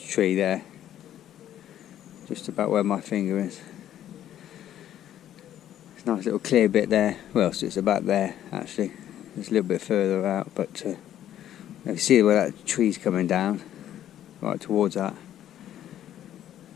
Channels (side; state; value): right; quieter; 11.5 dB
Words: there, just about where my finger is. It's a nice little clear bit there. Well, so it's about there actually. It's a little bit further out, but you see where that tree's coming down, right towards that.